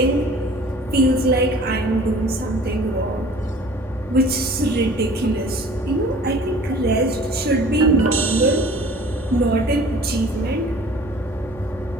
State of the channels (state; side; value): normal; both; correlation 0.47